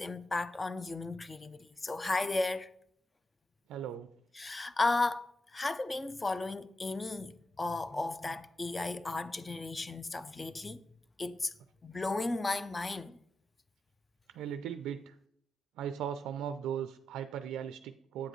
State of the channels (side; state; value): both; normal; correlation 0.88